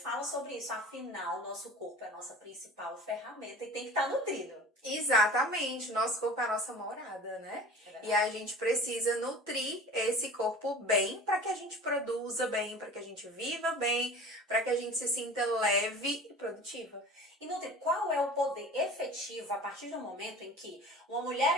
sobre isso. Afinal, nosso corpo é a nossa principal ferramenta e tem que estar nutrido. Exatamente, nosso corpo é a nossa morada, né? E a gente precisa nutrir esse corpo bem para que a gente produza bem, para que a gente viva bem, para que a gente se sinta leve e produtiva. E Nutri, qual é o poder efetivo a partir do momento em que uma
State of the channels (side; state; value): both; normal; correlation 0.40